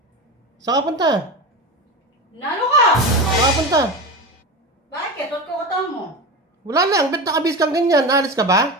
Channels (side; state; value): both; normal; correlation 0.25